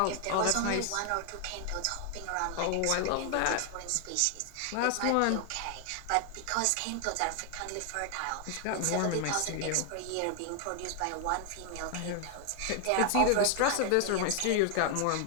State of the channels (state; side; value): different; both; correlation 0.00